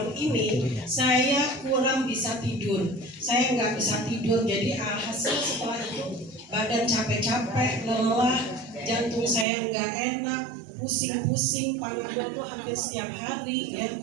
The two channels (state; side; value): drops out; left; at 9.5 s